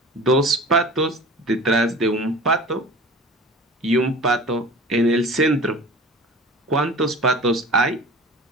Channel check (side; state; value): both; normal; correlation 0.40